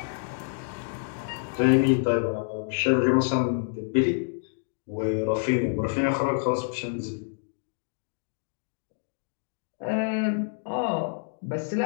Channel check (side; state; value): right; silent; digital silence